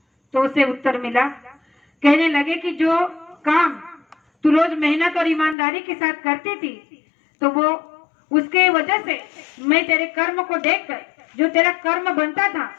तो उसे उत्तर मिला, कहने लगे कि जो काम तू रोज मेहनत और ईमानदारी के साथ करती थी, तो वो उसके वजह से मैं तेरे कर्म को देखकर, जो तेरा कर्म बनता था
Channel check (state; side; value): drops out; right; at 5.6 s